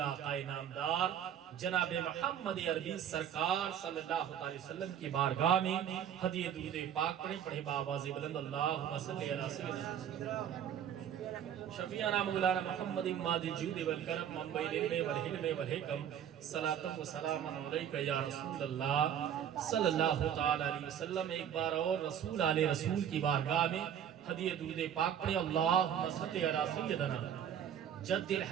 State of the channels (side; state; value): left; quieter; 9.4 dB